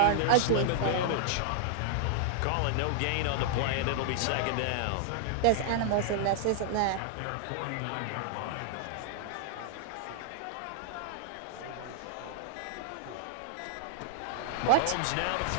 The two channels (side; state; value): both; different; correlation 0.00